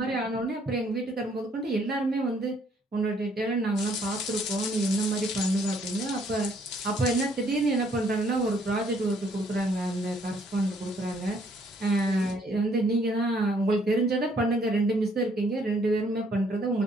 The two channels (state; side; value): normal; both; correlation 0.65